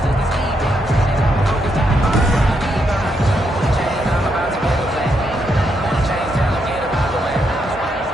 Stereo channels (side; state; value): both; normal; correlation 0.79